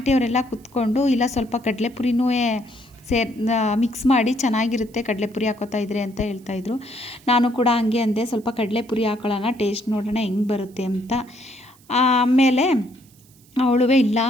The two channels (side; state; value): right; noise; hiss, 29 dB below the sound